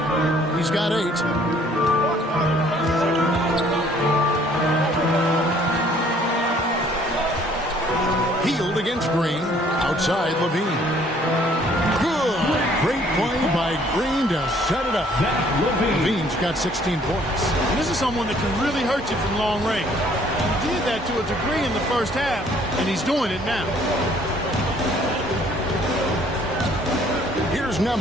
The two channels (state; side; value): normal; both; correlation 0.60